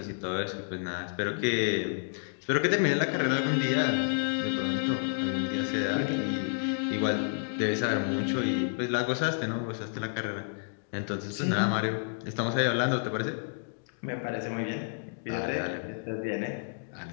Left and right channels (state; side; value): silent; right; digital silence